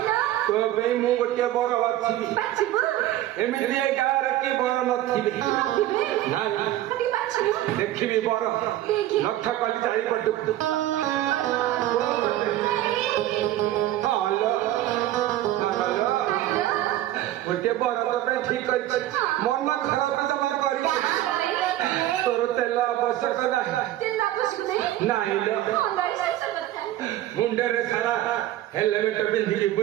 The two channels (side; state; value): left; quieter; 14.0 dB